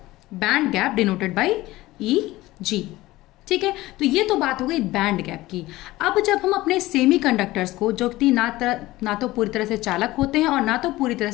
band gap denoted by EG। ठीक है, तो ये तो बात हो गई बैंड गैप की। अब जब हम अपने सेमीकंडक्टर्स को, जो कि ना तो पूरी तरह से चालक होते हैं और ना तो पूरी तरह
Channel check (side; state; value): right; quieter; 17.9 dB